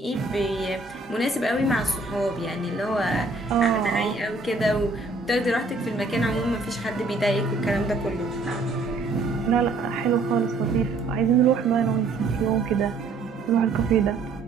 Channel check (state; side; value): quieter; left; 3.6 dB